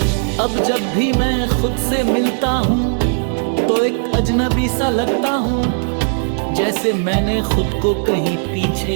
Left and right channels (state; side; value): silent; left; digital silence